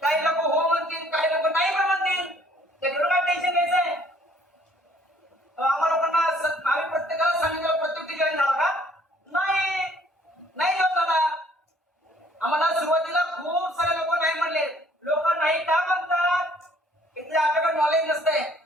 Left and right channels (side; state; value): both; normal; correlation 0.60